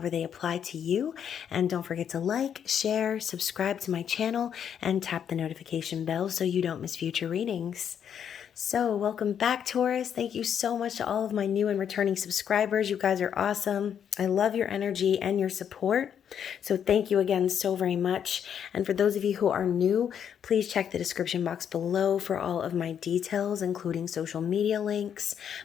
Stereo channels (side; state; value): right; quieter; 8.5 dB